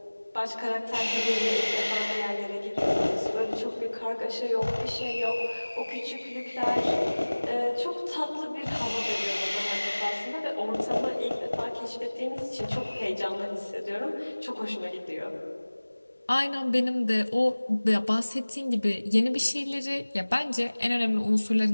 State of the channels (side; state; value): both; inverted; correlation -1.00